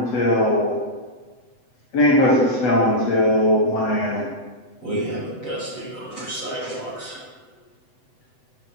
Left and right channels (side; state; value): right; late; 7.9 ms